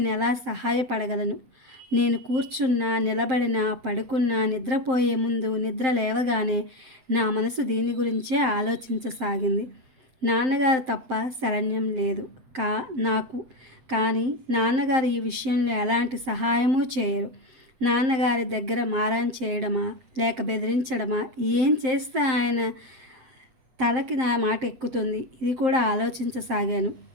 ఎలా సహాయపడగలను? నేను కూర్చున్నా, నిలబడినా, పడుకున్నా, నిద్రపోయే ముందు, నిద్ర లేవగానే నా మనసు దీని గురించే ఆలోచించసాగింది. నాన్నగారు తప్ప శరణ్యం లేదు నాకు. కానీ నాన్నగారు ఈ విషయంలో ఎలాంటి సహాయమూ చేయరు. నాన్నగారి దగ్గర మారాన్ చేయడమా, లేక బెదిరించడమా, ఏం చేస్తే ఆయన తలకి నా మాట ఎక్కుతుంది, ఇది కూడా ఆలోచించసాగాను.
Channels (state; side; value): late; left; 7.7 ms